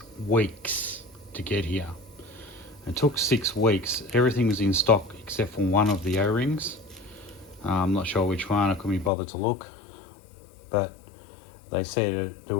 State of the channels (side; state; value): right; drops out; at 9.1 s